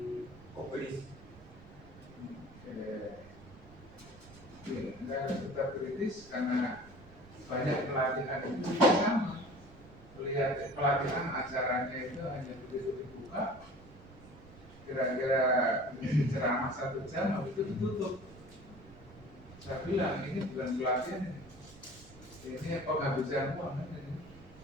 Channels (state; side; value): noise; right; rumble, 21 dB below the sound